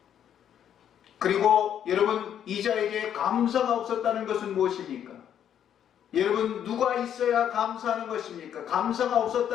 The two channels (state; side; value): quieter; right; 9.5 dB